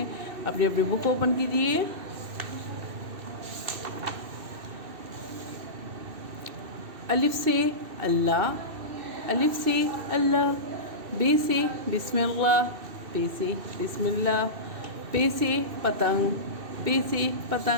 अपनी अपनी बुक ओपन कीजिए। अलिफ से अल्लाह, अलिफ से अल्लाह। बे से बिस्मिल्लाह, पे से बिस्मिल्लाह। पे से पतंग, पे से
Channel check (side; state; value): left; late; 2.7 ms